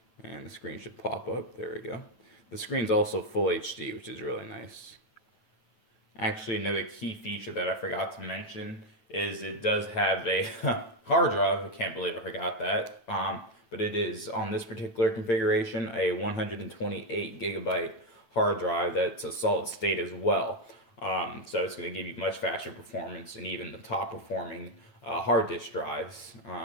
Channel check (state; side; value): late; right; 9.1 ms